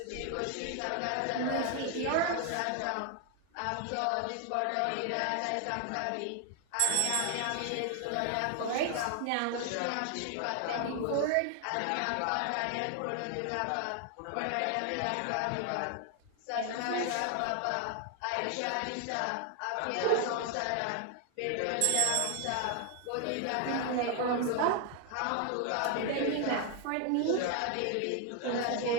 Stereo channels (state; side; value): different; both; correlation 0.00